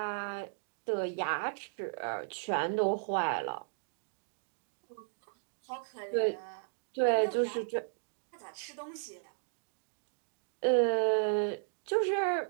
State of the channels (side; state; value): left; silent; digital silence